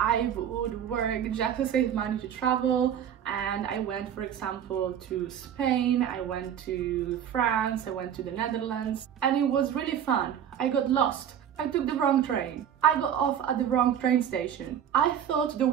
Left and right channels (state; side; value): quieter; left; 9.3 dB